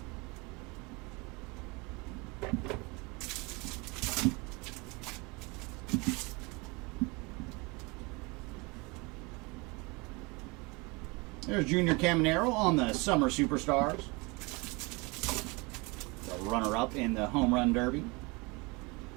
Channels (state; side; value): quieter; left; 27.1 dB